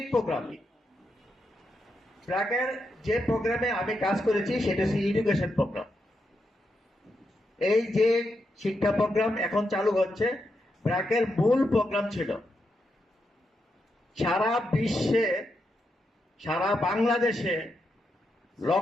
প্রোগ্রাম, ব্র্যাকের যে প্রোগ্রামে আমি কাজ করেছি সেটা হচ্ছে এডুকেশন প্রোগ্রাম। এই যে শিক্ষা প্রোগ্রাম এখন চালু হচ্ছে, ব্র্যাকের মূল প্রোগ্রাম ছিল সারা বিশ্বে, সারা বাংলাদেশে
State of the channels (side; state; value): both; normal; correlation 0.84